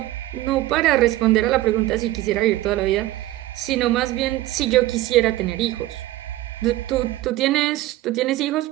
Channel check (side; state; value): left; quieter; 16.3 dB